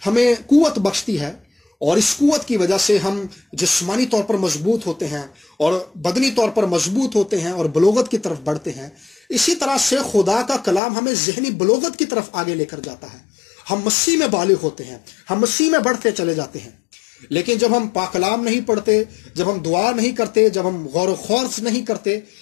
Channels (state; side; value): drops out; right; at 10.8 s